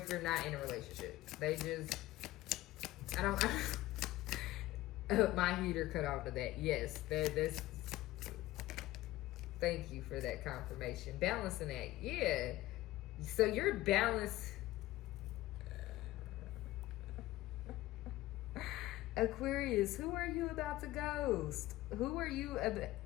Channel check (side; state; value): right; quieter; 16.8 dB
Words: you're not in a relationship. They just, my heater cut off to that. Yes, that's. Thank you for that confirmation. Balancing act, yeah. So you're balanced. Aquarius, who are you about to ghost? Who are you?